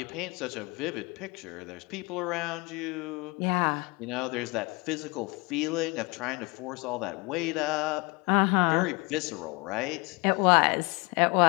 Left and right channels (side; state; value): right; quieter; 27.4 dB